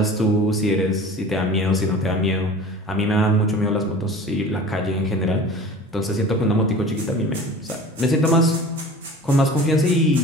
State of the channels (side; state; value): both; normal; correlation 0.40